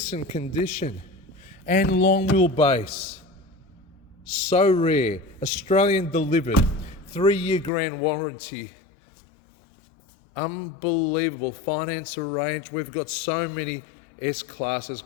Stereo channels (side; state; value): right; drops out; at 7.7 s